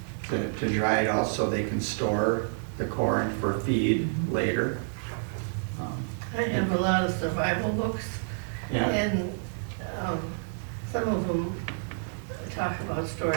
to dry it out so they can store the corn for feed later. I have a lot of survival books, Yeah. and some of them talk about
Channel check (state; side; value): silent; left; digital silence